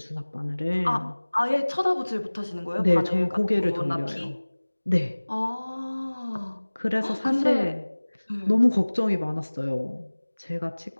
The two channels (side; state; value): both; inverted; correlation -1.00